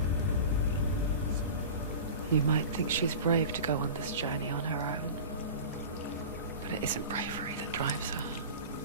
you. You might think she's brave to go on this journey on her own. But it isn't bravery that drives her.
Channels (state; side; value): inverted; both; correlation -0.33